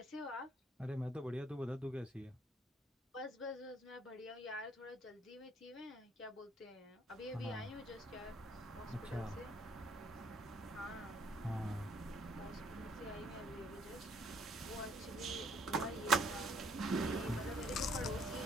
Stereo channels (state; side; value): normal; both; correlation 0.65